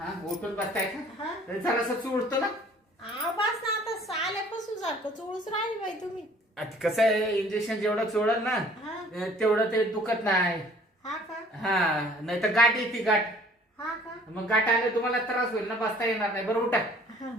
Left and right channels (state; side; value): normal; both; correlation 0.54